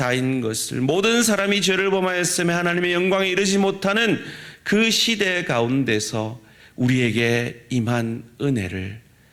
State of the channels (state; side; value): identical; both; correlation 1.00